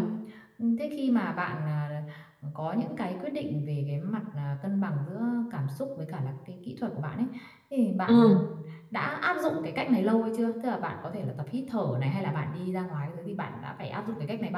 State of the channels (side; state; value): both; identical; correlation 1.00